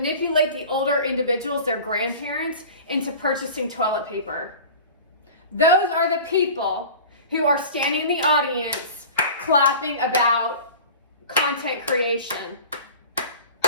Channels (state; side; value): inverted; both; correlation -0.38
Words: the older individuals, their grandparents, into purchasing toilet paper. Those are the people who are standing in the audience clapping about content creation.